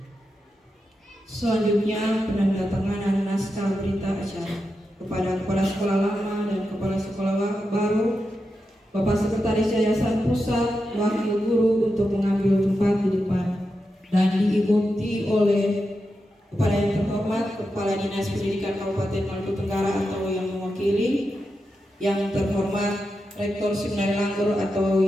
Selanjutnya, penandatanganan naskah berita acara kepada Kepala Sekolah Lama dan Kepala Sekolah Baru, Bapak Sekretaris Yayasan Pusat, Wakil Guru untuk mengambil tempat di depan dan diikuti oleh Kepala yang terhormat Kepala Dinas Pendidikan Kabupaten Maluku Tenggara atau yang mewakili, yang terhormat Rektor Seminari Langgur atau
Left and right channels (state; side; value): normal; both; correlation 0.88